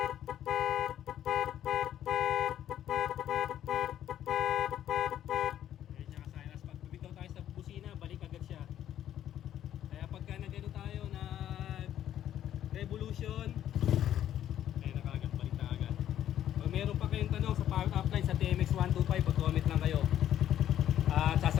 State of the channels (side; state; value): right; quieter; 11.1 dB